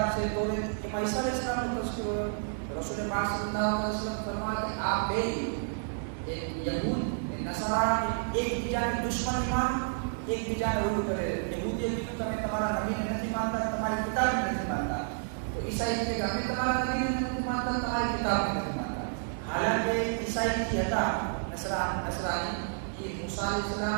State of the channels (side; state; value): left; silent; digital silence